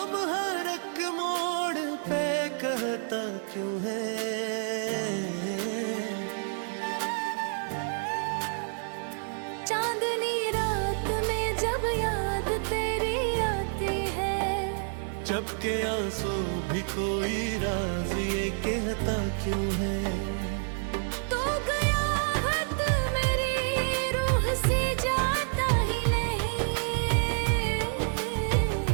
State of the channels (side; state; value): left; silent; 55 dB below the other